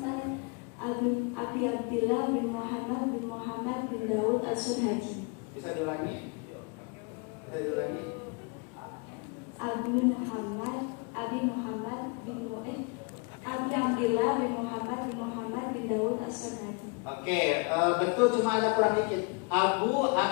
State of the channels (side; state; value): right; quieter; 32.2 dB